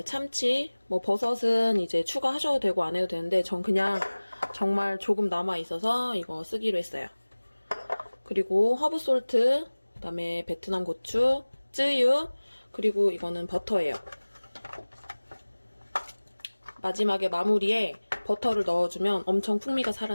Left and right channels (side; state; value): both; inverted; correlation -1.00